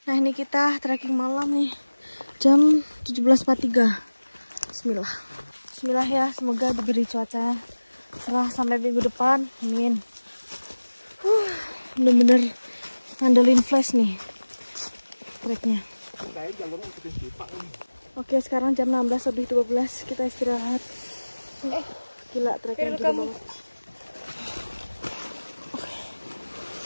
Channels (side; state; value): both; inverted; correlation -1.00